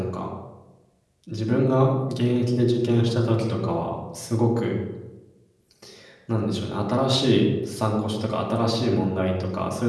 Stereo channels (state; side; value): identical; both; correlation 1.00